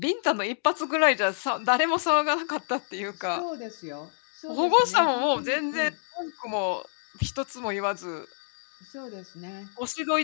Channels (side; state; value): right; silent; digital silence